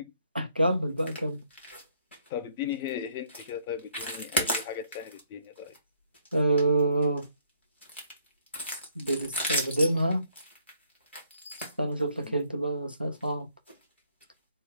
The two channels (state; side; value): inverted; both; correlation -0.67